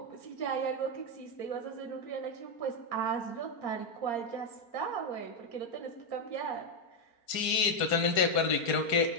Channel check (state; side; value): late; right; 4.4 ms